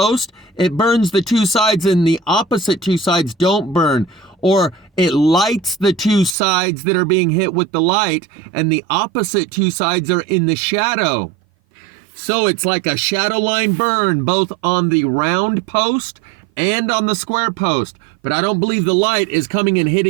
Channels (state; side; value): drops out; left; at 6.4 s